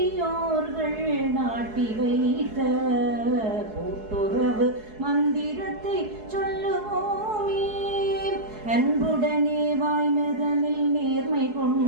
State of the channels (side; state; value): left; late; 4.7 ms